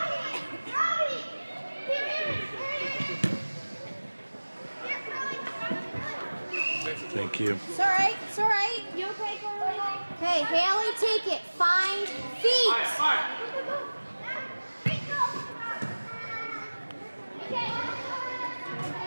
Thank you. It's all right. It's all right. You okay, Carly? Okay, Haley, take it. Find feet.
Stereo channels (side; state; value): both; inverted; correlation -1.00